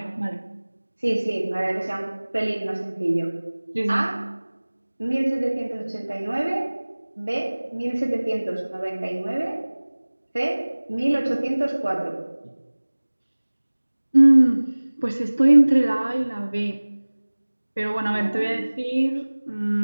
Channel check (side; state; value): both; inverted; correlation -1.00